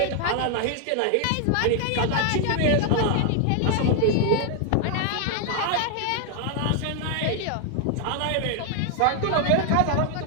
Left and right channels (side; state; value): both; different; correlation 0.00